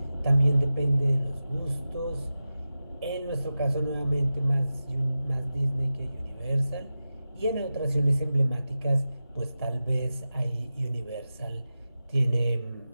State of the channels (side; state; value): both; inverted; correlation -0.93